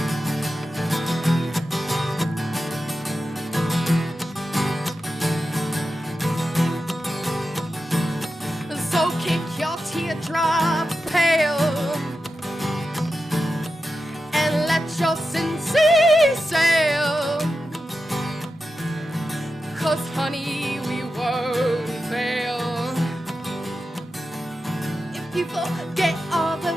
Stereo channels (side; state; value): both; normal; correlation 0.90